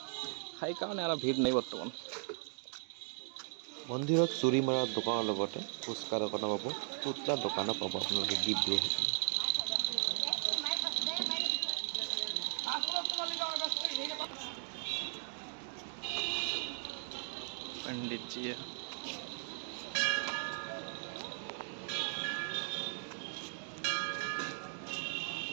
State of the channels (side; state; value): left; silent; 53 dB below the other